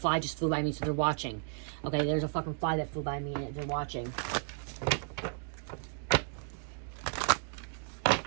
just flew by me, so they're watching. Okay, there's a fucking fly that flew by me, and they're watching.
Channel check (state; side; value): silent; left; 55 dB below the other